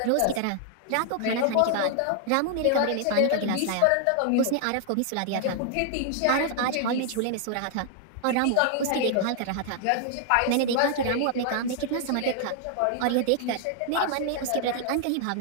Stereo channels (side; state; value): both; different; correlation 0.00